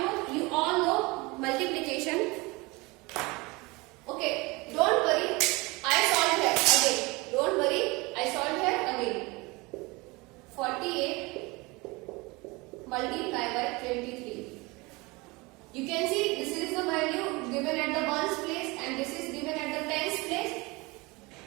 you all know multiplication. Okay, don't worry, I solved here again. Don't worry, I solved here again. 48 multiplied by 23. You can see this is the value given at the ones place and this is given at the tens place.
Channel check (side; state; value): left; quieter; 24.7 dB